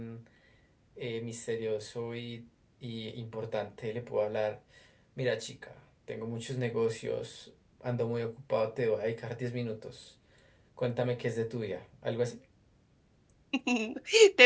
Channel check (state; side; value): identical; both; correlation 1.00